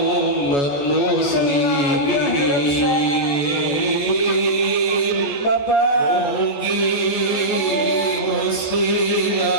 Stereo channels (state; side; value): late; right; 14 ms